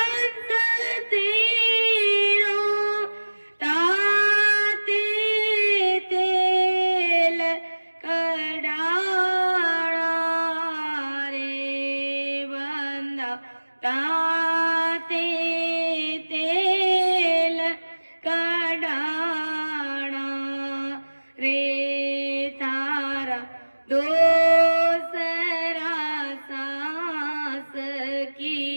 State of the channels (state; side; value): inverted; both; correlation -1.00